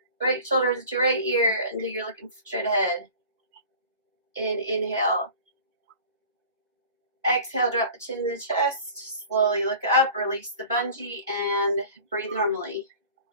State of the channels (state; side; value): inverted; both; correlation -0.42